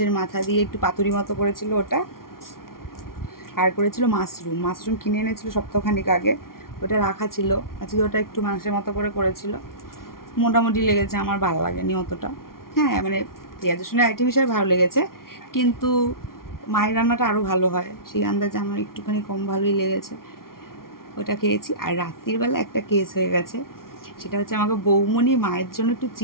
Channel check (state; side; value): late; right; 0.93 ms